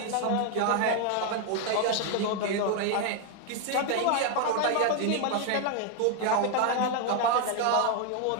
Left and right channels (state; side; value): different; both; correlation 0.01